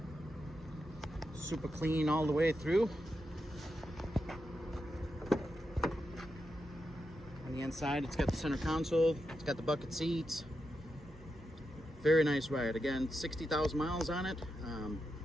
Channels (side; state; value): both; normal; correlation 0.87